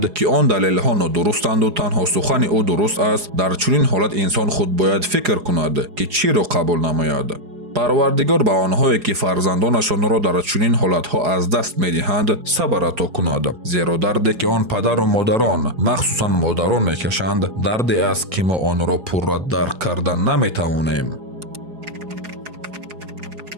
ки он далелҳо нодурустанду танҳо сухани ӯ дуруст аст, дар чунин ҳолат инсон худ бояд фикр кунад ки чиро қабул намояд. парвардигор ба онҳое ки фарзандонашонро дар чунин ҳолатҳо аз даст медиҳанд сабр ато кунад, зеро дарде ки он падару модарон махсусан модарон мекашанд дарде аст ки мо онро пурра дарк карда наметавонем.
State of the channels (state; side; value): late; left; 4.8 ms